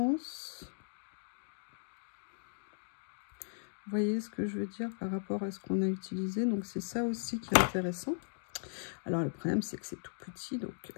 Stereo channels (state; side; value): silent; right; digital silence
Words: Vous voyez ce que je veux dire par rapport à ce qu'on a utilisé. Donc, c'est ça aussi qui est intéressant. Alors, le problème, c'est que c'est tout petit. Donc,